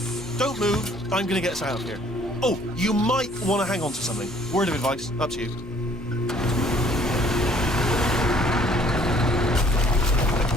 Don't move. I'm gonna get us out of here. Oh, you might want to hang on to something. Word of advice. Up to you.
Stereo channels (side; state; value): both; normal; correlation 0.59